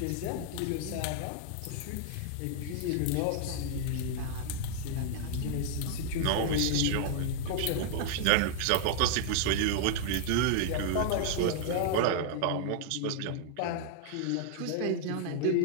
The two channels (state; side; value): different; both; correlation 0.00